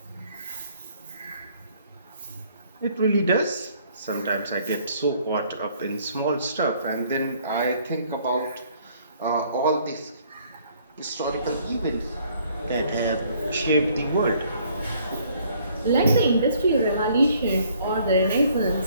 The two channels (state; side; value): inverted; both; correlation -0.62